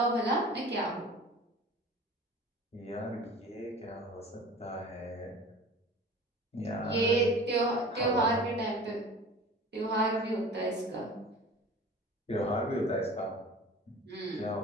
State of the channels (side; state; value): both; normal; correlation 0.41